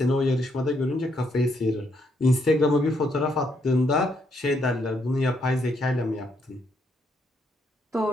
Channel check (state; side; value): normal; both; correlation 0.75